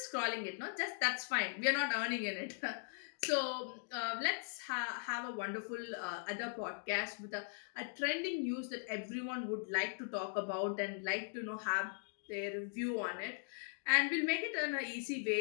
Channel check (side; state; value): right; silent; digital silence